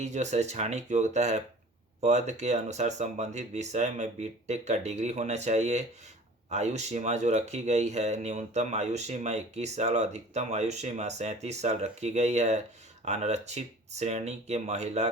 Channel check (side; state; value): both; normal; correlation 0.44